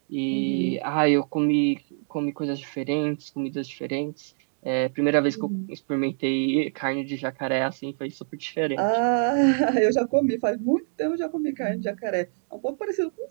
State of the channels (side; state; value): left; silent; digital silence